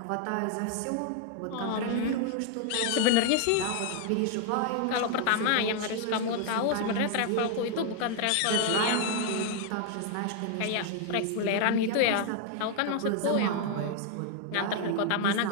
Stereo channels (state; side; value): different; both; correlation 0.00